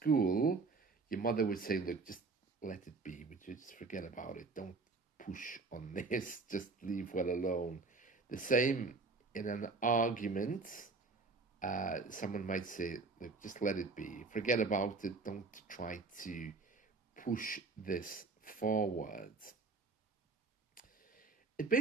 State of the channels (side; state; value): left; quieter; 4.0 dB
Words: Your mother would say, look, just let it be. Would you just forget about it? Don't push on this. Just leave well alone. The same in an argument. Someone might say, look, just let it be. Forget about it. Don't try to push this forward. It